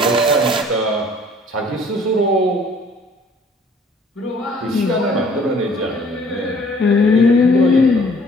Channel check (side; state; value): both; normal; correlation 0.56